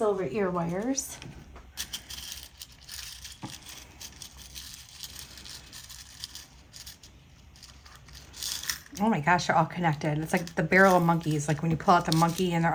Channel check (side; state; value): both; identical; correlation 1.00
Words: ear wires. Oh my gosh, they're all connected. It's like the barrel of monkeys. Like when you pull out the monkey and they're